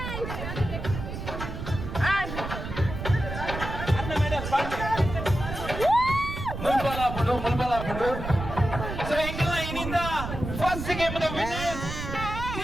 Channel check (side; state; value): right; noise; rumble, 6 dB below the sound